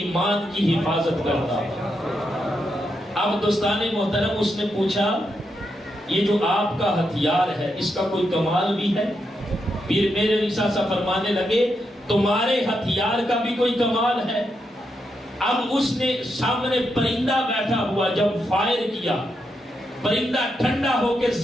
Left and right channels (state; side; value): normal; both; correlation 0.83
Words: کی حفاظت کرتا ہے۔ اب دوستان محترم، اس نے پوچھا یہ جو آپ کا ہتھیار ہے اس کا کوئی کمال بھی ہے؟ پیر مہر علی شاہ صاحب فرمانے لگے تمہارے ہتھیار کا بھی کوئی کمال ہے؟ اب اس نے سامنے پرندہ بیٹھا ہوا جب فائر کیا، پرندہ ٹھنڈا ہو کے